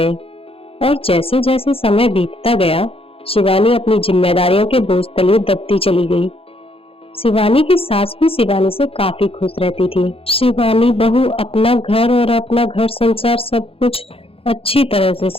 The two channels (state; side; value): late; right; 0.27 ms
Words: और जैसे जैसे समय बीतता गया, शिवानी अपनी जिम्मेदारियों के बोझ तले दबती चली गई। शिवानी की सास भी शिवानी से काफी खुश रहती थी। शिवानी बहू अपना घर और अपना घर संसार सब कुछ अच्छी तरह से